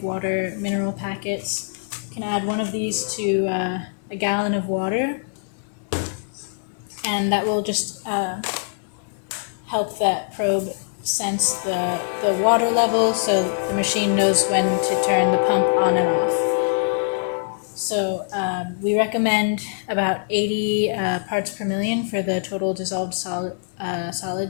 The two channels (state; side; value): silent; right; digital silence